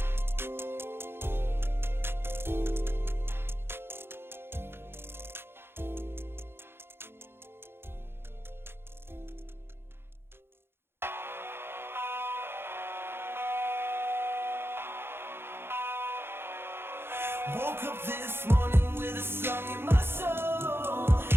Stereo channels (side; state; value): left; late; 0.11 ms